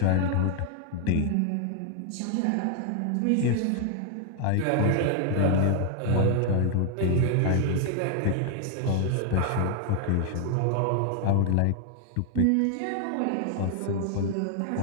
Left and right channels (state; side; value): different; both; correlation 0.00